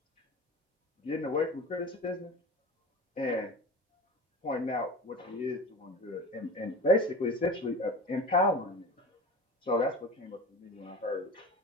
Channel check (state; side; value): normal; both; correlation 0.33